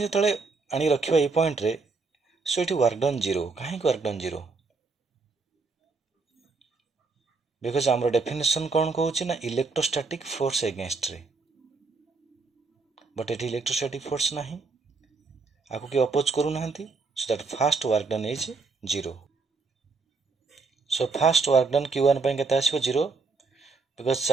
जतले आनी रखिबा ए पॉइंट रे सो एठी वर्क डन 0 काहे वर्क डन 0 बिकॉज़ हमर डेफिनेशन कोन कहूची ना इलेक्ट्रोस्टैटिक फोर्स अगेंस्ट रे बट एठी इलेक्ट्रोस्टैटिक फोर्स नाही आको के अपोज करू नाहंती so that first work done is 0 so first work done Q1 पय केता आसीबो 0 बिकज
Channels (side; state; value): left; quieter; 4.3 dB